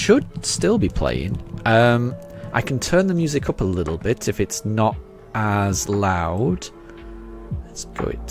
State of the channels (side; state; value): both; identical; correlation 1.00